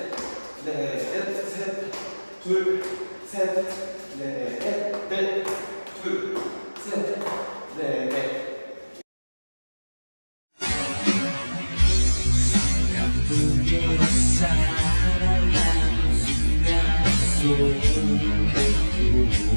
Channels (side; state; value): both; inverted; correlation -1.00